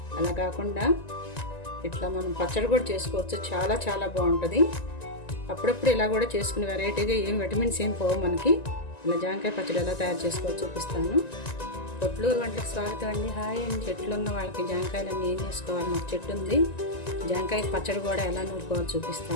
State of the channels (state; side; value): late; right; 1.9 ms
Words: అలా కాకుండా ఇట్లా మనం పచ్చడి కూడా చేసుకోవచ్చు. చాలా చాలా బాగుంటుంది. అప్పుడప్పుడు ఇలా కూడా చేసుకుని వెరైటీగా ఏం విటమిన్స్ ఏం పోవు మనకి. ఇలా జామకాయ పచ్చడి ఎలా తయారు చేసుకోవాలో చూపిస్తాను. పొట్లూరు వంటలకు స్వాగతం అండి. హాయ్ అండి. చెట్లు ఉన్న వాళ్ళకి జామకాయలన్నీ ఏం చేసుకోవాలి. మాకు చెట్టు ఉంది. జామకాయ పచ్చడి కూడా ఎలా నూరుకోవాలో